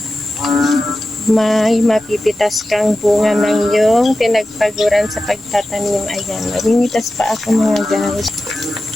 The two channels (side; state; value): both; normal; correlation 0.93